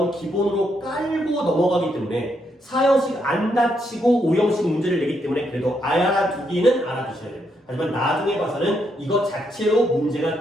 기본으로 깔고 넘어가기 때문에 4형식 안 다치고 5형식 문제를 내기 때문에 그래도 알아두기는 알아두셔야 돼요. 하지만 나중에 봐서는 이것 자체로 문제가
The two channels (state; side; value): normal; both; correlation 0.78